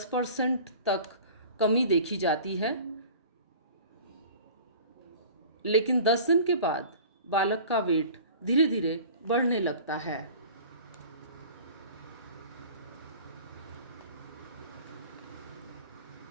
तक कमी देखी जाती है, लेकिन 10 दिन के बाद बालक का वेट धीरे धीरे बढ़ने लगता है।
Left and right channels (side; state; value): both; inverted; correlation -0.43